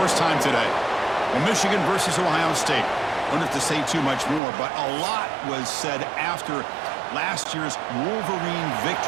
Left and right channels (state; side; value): drops out; left; at 4.4 s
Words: time today. Well, Michigan versus Ohio State. I don't have to say too much more, but a lot was said after last year's Wolverine